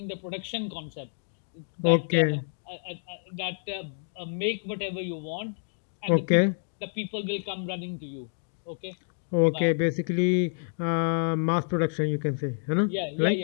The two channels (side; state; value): right; silent; digital silence